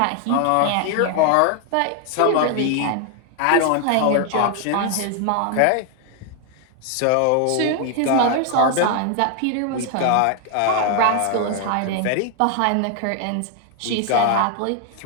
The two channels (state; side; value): different; both; correlation 0.00